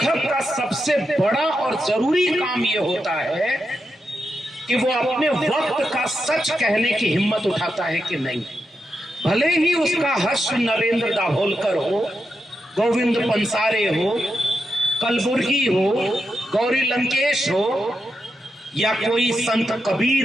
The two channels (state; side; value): normal; both; correlation 0.86